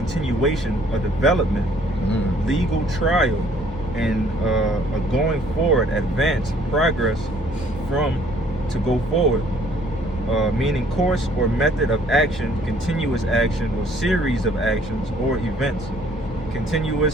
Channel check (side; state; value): both; normal; correlation 0.60